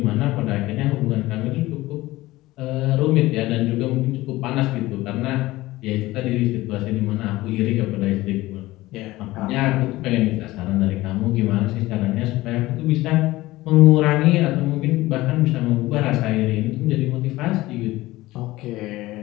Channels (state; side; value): quieter; right; 18.3 dB